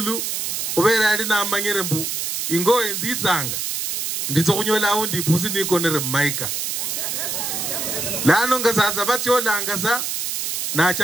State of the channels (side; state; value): right; noise; hiss, 2 dB below the sound